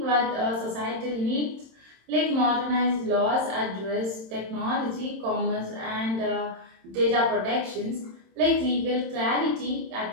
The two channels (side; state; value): left; late; 27 ms